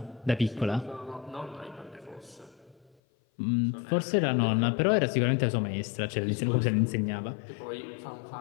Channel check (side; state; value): right; drops out; at 2.9 s